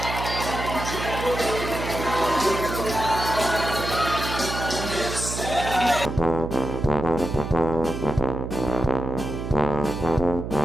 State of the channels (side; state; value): right; noise; hum, 6 dB below the sound